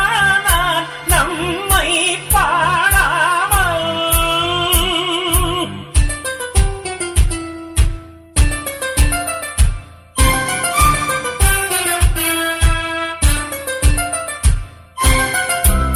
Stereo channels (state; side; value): identical; both; correlation 1.00